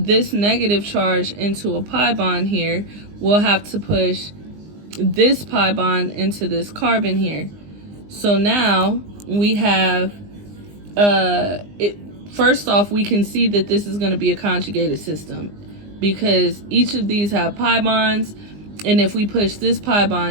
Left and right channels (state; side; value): late; left; 20 ms